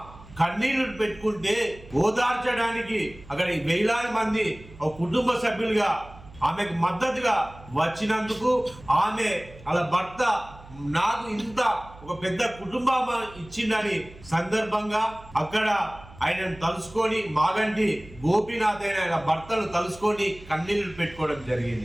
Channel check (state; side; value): noise; right; hum, 20 dB below the sound